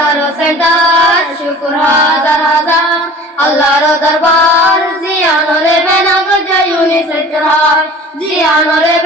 আরো সেন্টার শুকুর হাজার হাজার আল্লাহর দরবার জিয়ানরে বেনা গজে ইউনিসেফ চরহার জিয়ানরে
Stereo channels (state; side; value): normal; both; correlation 0.43